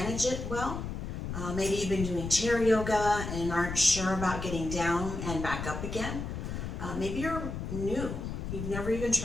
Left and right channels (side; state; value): left; noise; rumble, 5 dB below the sound